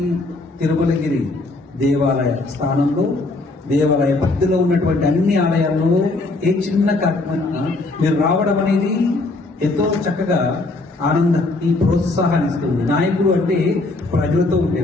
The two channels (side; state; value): right; quieter; 3.1 dB